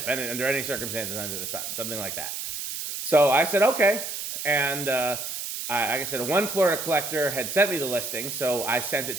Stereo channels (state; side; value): noise; right; hiss, 5 dB below the sound